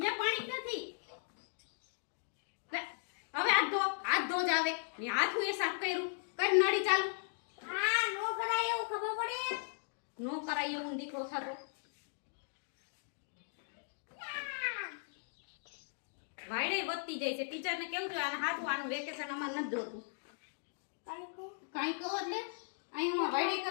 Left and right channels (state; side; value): silent; right; digital silence